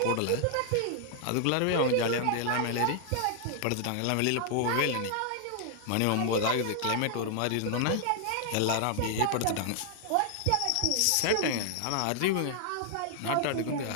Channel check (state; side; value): different; both; correlation 0.00